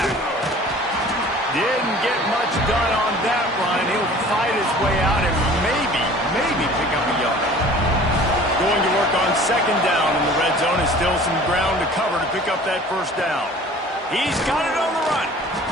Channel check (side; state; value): both; normal; correlation 0.47